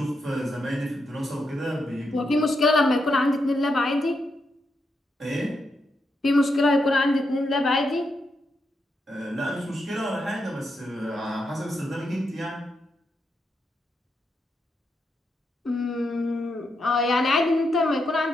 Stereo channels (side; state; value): both; normal; correlation 0.83